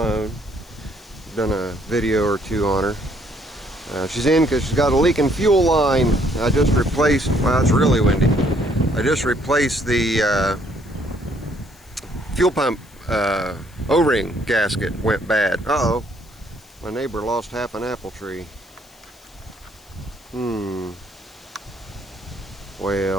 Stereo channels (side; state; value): left; noise; hiss, 27 dB below the sound